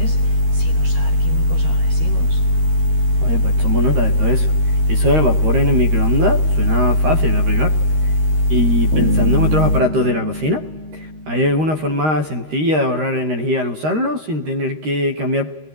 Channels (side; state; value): left; late; 13 ms